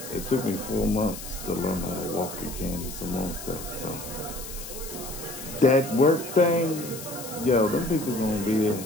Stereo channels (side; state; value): left; noise; hiss, 11 dB below the sound